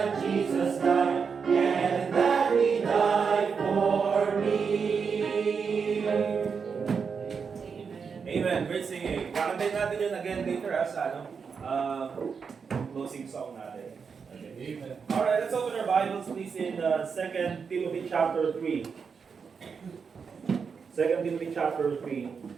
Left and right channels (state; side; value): quieter; left; 5.9 dB